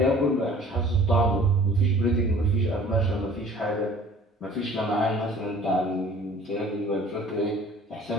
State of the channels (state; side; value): normal; both; correlation 0.50